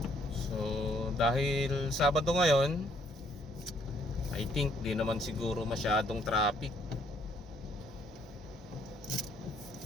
So dahil Sabado ngayon, I think di naman siguro masyadong traffic.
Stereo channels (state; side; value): normal; both; correlation 0.66